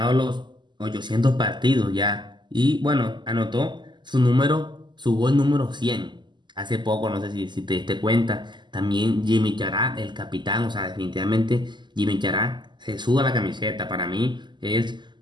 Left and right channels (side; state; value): left; late; 0.22 ms